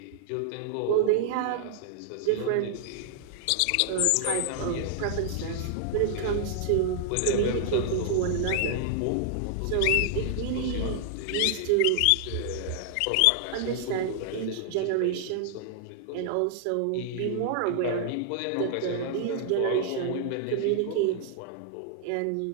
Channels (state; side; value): different; both; correlation -0.01